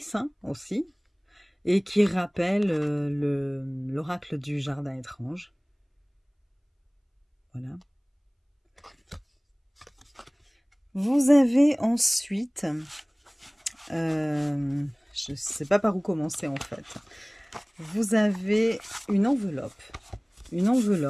hein, aussi, et qui rappelle l'oracle du Jardin étrange. Voilà. Vous avez ensuite, je ne sais pas par où commencer en fait, vous avez une enveloppe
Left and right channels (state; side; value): identical; both; correlation 1.00